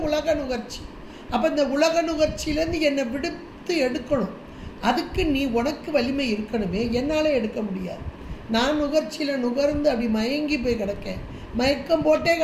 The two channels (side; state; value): both; identical; correlation 1.00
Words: உலக நுகர்ச்சி. அப்ப இந்த உலக நுகர்ச்சியிலேருந்து என்னை விடுத்து எடுக்கணும். அதுக்கு நீ உனக்கு வலிமை இருக்கணுமே, என்னால எடுக்க முடியாது. நான் நுகர்ச்சியில நுகர்ந்து அப்படி மயங்கி போய் கிடக்கேன், மயக்கம் போட்டே